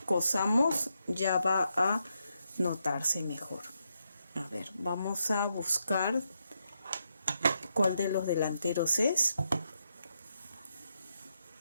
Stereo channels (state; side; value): inverted; both; correlation -0.82